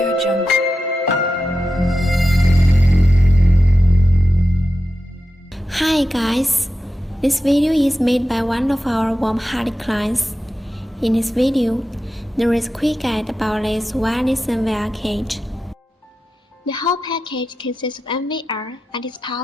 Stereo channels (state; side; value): normal; both; correlation 0.91